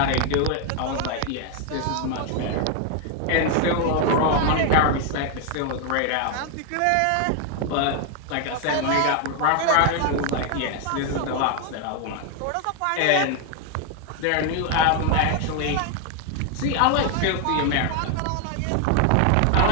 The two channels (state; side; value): different; both; correlation 0.00